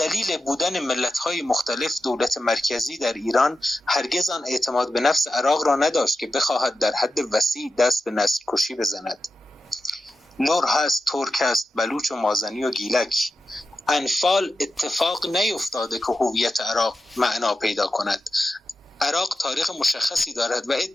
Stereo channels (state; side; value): normal; both; correlation 0.91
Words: بودن ملت‌های مختلف دولت مرکزی در ایران هرگز آن اعتماد به نفس عراق را نداشت که بخواهد در حد وسیع دست به نسل کشی بزند. لور هست، ترک هست، بلوچ و مازنی و گیلک. انفال اتفاق نیفتاده که هویت عراق معنا پیدا کند. عراق تاریخ مشخصی دارد و